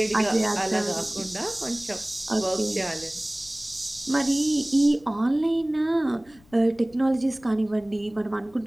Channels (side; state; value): left; noise; rumble, 28 dB below the sound